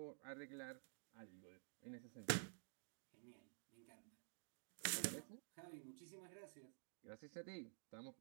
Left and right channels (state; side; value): silent; left; digital silence